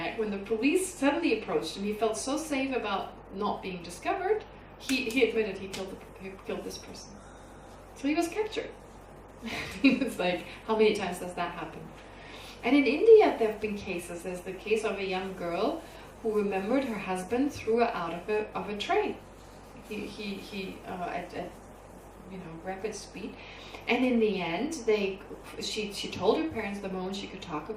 when the police suddenly approached him. He felt so safe about not being discovered. He admitted he killed this person. So he was captured. It's like, how many times does that happen? And in India, there have been cases. There's the case of a young girl who remembered her husband threw her out of a train. He at rapid speed, and in the end, she told her parents the moment she could talk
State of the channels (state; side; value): identical; both; correlation 1.00